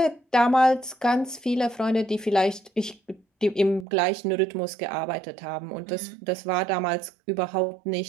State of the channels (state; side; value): drops out; left; at 3.9 s